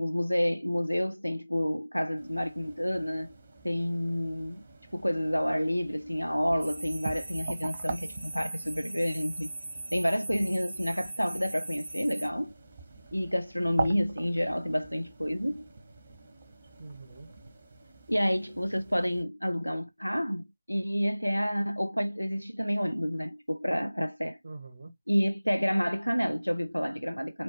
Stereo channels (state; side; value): inverted; both; correlation -0.98